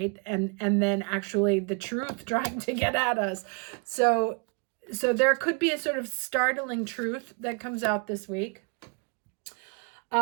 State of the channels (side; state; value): left; quieter; 35.3 dB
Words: And then actually the truth trying to get at us. So there could be a sort of startling truth that comes out this week.